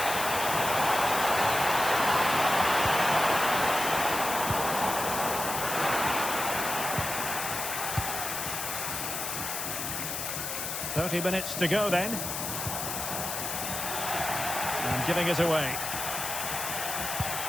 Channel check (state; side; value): noise; left; hiss, 4 dB below the sound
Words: "30 minutes to go then. And giving it away.